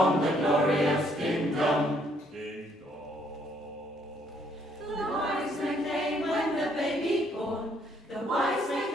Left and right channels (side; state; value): both; normal; correlation 0.68